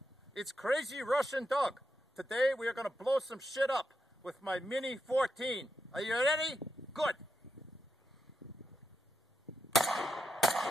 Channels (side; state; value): both; normal; correlation 0.84